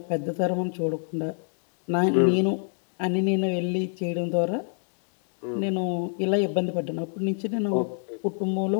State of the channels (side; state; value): right; silent; 60 dB below the other